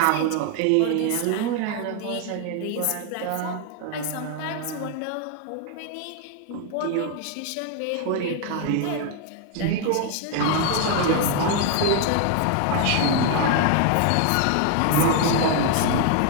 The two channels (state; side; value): different; both; correlation 0.01